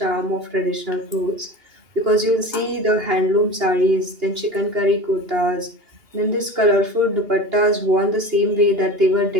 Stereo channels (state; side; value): late; left; 2.8 ms